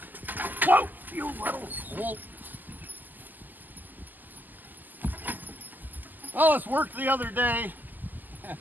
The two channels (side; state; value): left; late; 0.086 ms